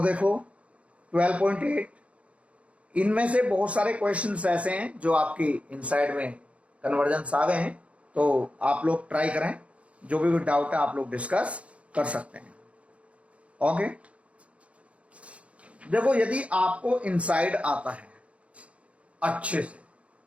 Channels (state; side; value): late; left; 0.063 ms